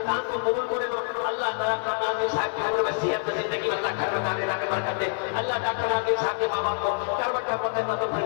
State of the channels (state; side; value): silent; right; 61 dB below the other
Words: दान को कबूल करे लो। अल्लाह डॉक्टर नाज़िम साहब की उम्र में, सेहत में, जिंदगी में अल्लाह घर में दाने दाने बरकत दे। अल्लाह डॉक्टर नाज़िम साहब के माँ बाप को करवट जन्नतुल